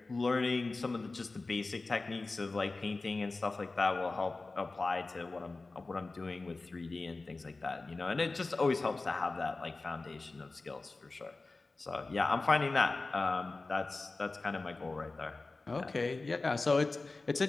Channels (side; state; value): right; quieter; 3.5 dB